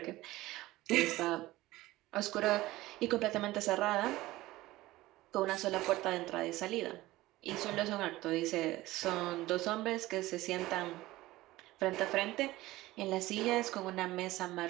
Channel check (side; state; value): left; quieter; 17.8 dB